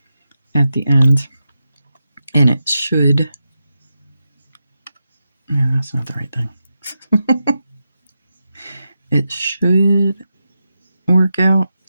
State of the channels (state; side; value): inverted; both; correlation -0.88